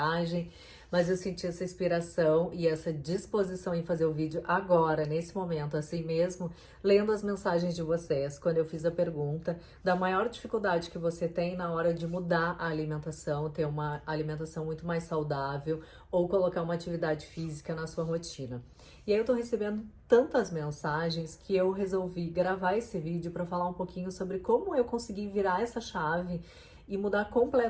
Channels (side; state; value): both; identical; correlation 1.00